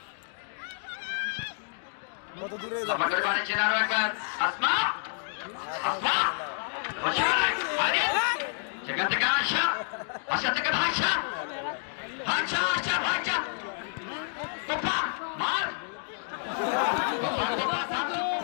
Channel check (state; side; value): silent; right; 58 dB below the other